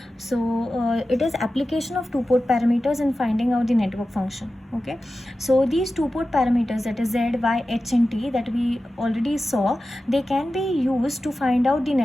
So it is application of two-port parameters in finding out the network function. Okay, so these two-port parameters, that is Z, Y, H and T, that we already saw, they can be used to find out the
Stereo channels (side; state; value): both; normal; correlation 0.94